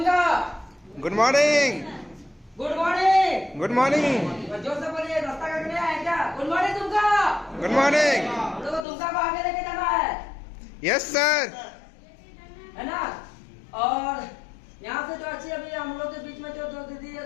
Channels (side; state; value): right; drops out; at 8.8 s